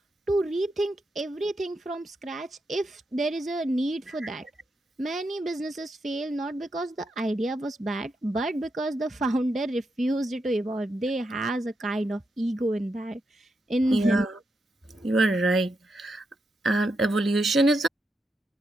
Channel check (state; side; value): normal; both; correlation 0.84